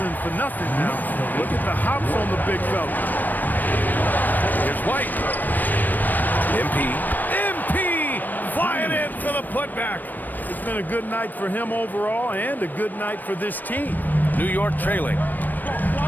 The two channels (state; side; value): late; right; 0.088 ms